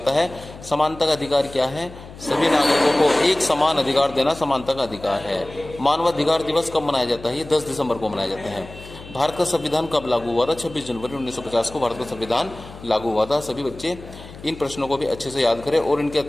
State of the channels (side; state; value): left; noise; hum, 16 dB below the sound